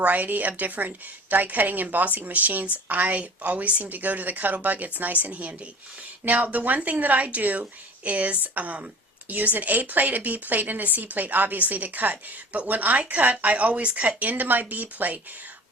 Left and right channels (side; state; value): both; normal; correlation 0.42